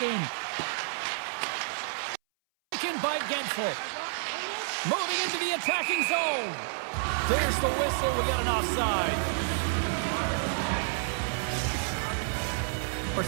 game. Taken by Gensel. Moving into the attacking zone. There's the whistle. We got an offside.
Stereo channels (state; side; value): silent; left; 58 dB below the other